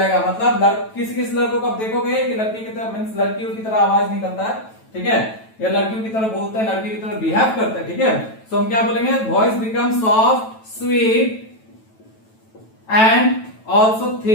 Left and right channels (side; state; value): right; late; 9.1 ms